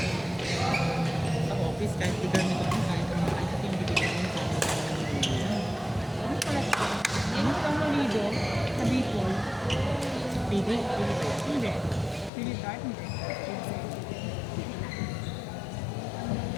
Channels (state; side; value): drops out; right; at 12.3 s